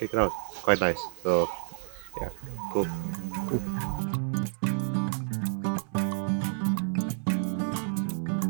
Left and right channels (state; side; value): silent; left; 57 dB below the other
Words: it out. It's quite nice. So yeah, cool.